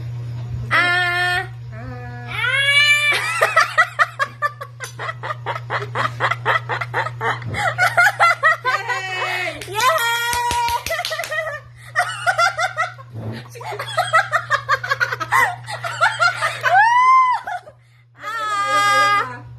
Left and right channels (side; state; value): both; identical; correlation 1.00